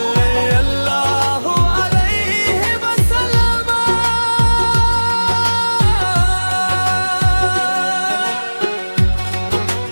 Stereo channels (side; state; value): both; inverted; correlation -1.00